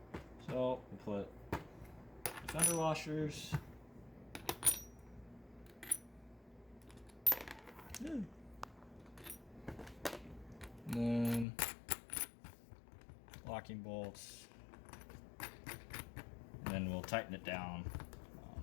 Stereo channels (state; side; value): drops out; right; at 11.5 s